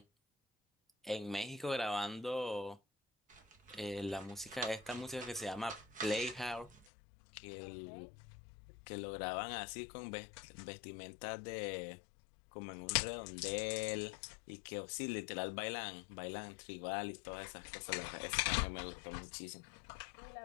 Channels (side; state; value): right; drops out; at 6.9 s